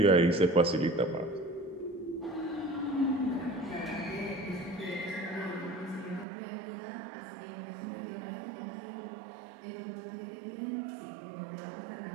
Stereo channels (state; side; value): drops out; left; at 6.2 s